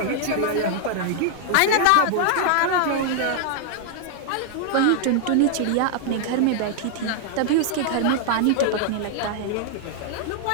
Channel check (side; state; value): both; different; correlation 0.00